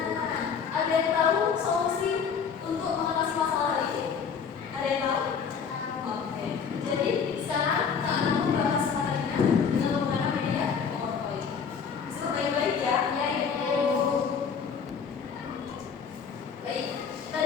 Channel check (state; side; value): quieter; right; 6.5 dB